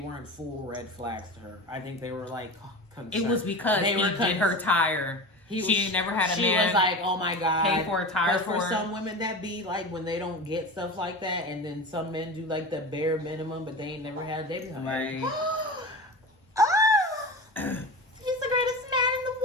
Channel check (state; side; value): normal; both; correlation 0.29